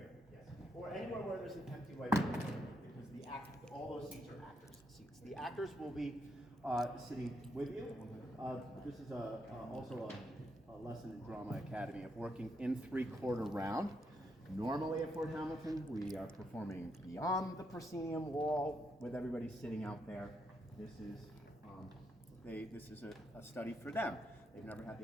yes. Or anywhere where there's an empty whiteboard, because all those seats are actors' seats. The actors will be sitting with you. This is also a lesson in Drama Academy of working in three-quarter round. Normally at Fort Hamilton, we are performing beyond the proscenium wall with everybody sitting out there. This is a study for them. They've never had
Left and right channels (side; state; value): both; normal; correlation 0.79